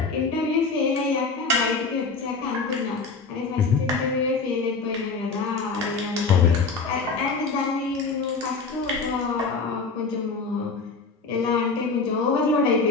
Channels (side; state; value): right; quieter; 4.4 dB